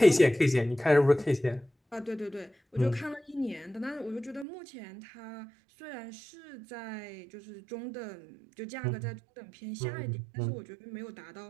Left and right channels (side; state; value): left; drops out; at 4.5 s